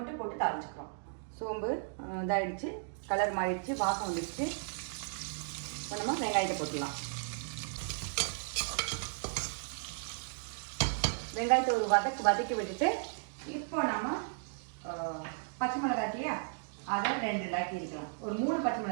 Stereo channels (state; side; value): silent; left; digital silence